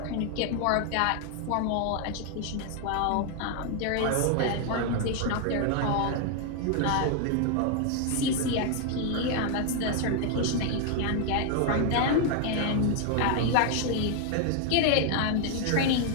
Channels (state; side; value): different; both; correlation 0.00